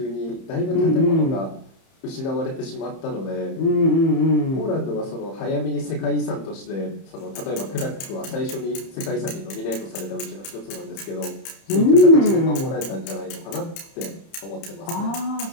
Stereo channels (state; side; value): late; right; 30 ms